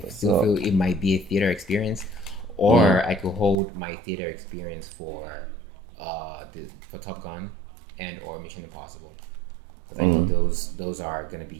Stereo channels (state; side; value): drops out; left; at 3.6 s